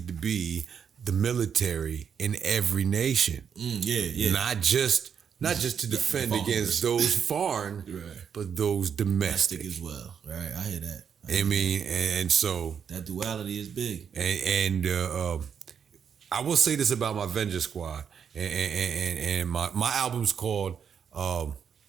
to be the military in every nation. Yeah. Not just to defend against those foreign, right. but those domestic as well. Right, I hear that. I mean, and so that duality is big. And I will say this about my Vengeance Squad, and my album's called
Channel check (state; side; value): quieter; left; 7.4 dB